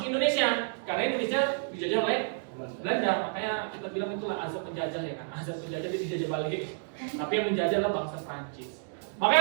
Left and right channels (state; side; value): silent; left; digital silence